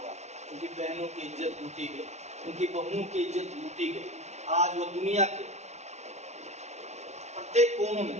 उनकी बहनों की इज्जत लूटी गई, उनकी बहुओं की इज्जत लूटी गई। आज वो दुनिया के प्रत्येक कोनों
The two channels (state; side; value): late; left; 0.32 ms